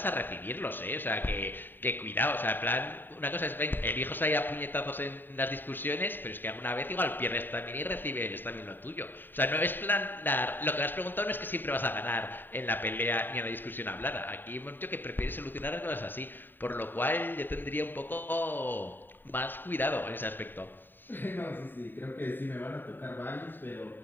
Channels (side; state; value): right; late; 0.093 ms